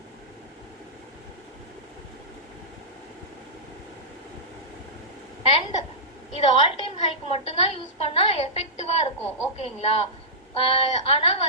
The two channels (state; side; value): normal; both; correlation -0.16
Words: அண்ட் இது ஆல் டைம் ஹைக்கு மட்டும்தான் யூஸ் பண்ணா எஃபெக்டிவா இருக்கும். ஓகேங்களா? ஆனா